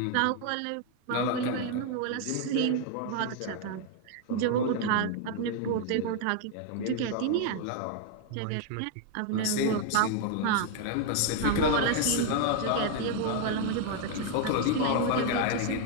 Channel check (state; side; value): different; both; correlation 0.00